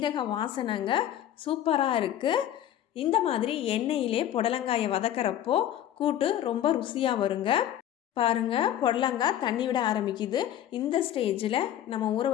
வாசனைங்க சூப்பராக இருக்குது. இந்த மாதிரி எண்ணெயிலே புடலங்காயை வதக்கிறப்போ கூட்டு ரொம்ப ருசியாக வருங்க. பாருங்கள், புடலங்காய் தண்ணி விட ஆரம்பிக்குது. இந்த ஸ்டேஜில் நம்ம ஊற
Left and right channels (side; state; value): right; quieter; 11.3 dB